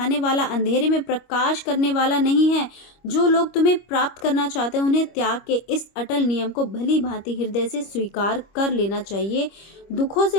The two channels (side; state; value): right; late; 25 ms